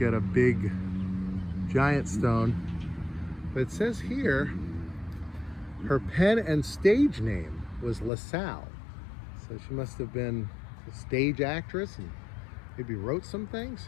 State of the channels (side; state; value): right; drops out; at 8.1 s